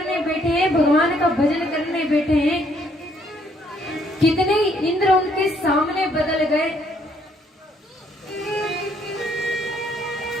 बैठे हैं, भगवान का भजन करने बैठे हैं। कितने इंद्र उनके सामने बदल गए।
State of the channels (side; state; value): both; normal; correlation 0.67